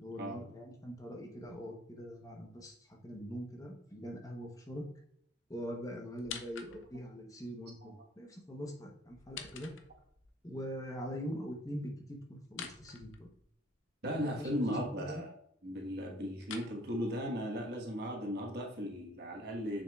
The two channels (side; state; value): both; normal; correlation 0.57